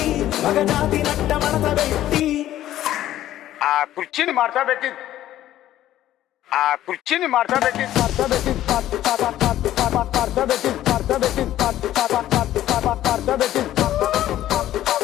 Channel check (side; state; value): right; quieter; 13.2 dB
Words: మగజాతి నట్ట మడత పెట్టి ఆ కుర్చీని మార్తా పెట్టి